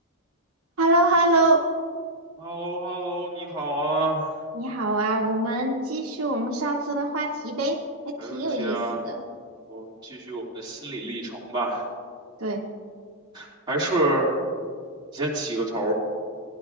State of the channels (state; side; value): normal; both; correlation -0.06